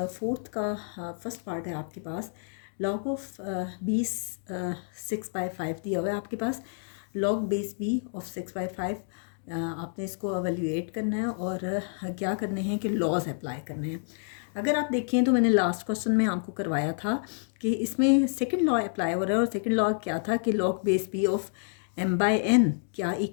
फोर्थ का फर्स्ट पार्ट है आपके पास। लॉग ऑफ 20 6/5 दिया हुआ है आपके पास। लॉग बेस बी ऑफ 6/5 आपने इसको एवेल्यूएट करना है और क्या करने हैं कि लॉज अप्लाई करने हैं। अगर आप देखें तो मैंने लास्ट क्वेश्चन में आपको करवाया था कि इसमें सेकंड लॉ अप्लाई हो रहा है और सेकंड लॉ क्या था कि log base B of m/n क्या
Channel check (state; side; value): silent; right; digital silence